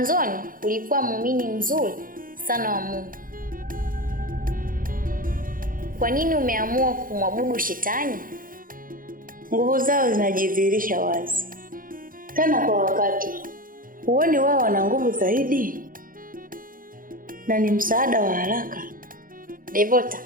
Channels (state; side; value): late; left; 0.40 ms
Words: ulikuwa muumini mzuri sana wa Mungu. Kwa nini umeamua kumwabudu shetani? Nguvu zao zinajidhihirisha wazi. Tena kwa wakati. Huoni wao wana nguvu zaidi? Na ni msaada wa haraka. Devota,